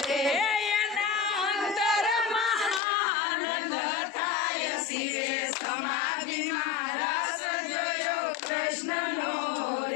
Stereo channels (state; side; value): drops out; right; at 2.8 s